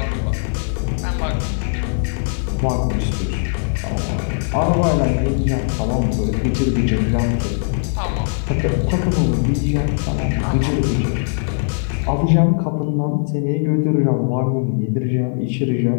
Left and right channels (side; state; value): right; silent; digital silence